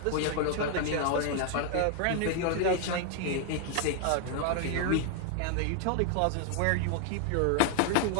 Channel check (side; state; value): both; different; correlation 0.00